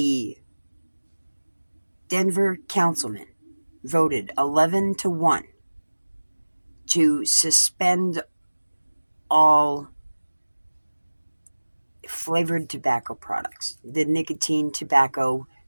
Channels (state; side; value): inverted; both; correlation -1.00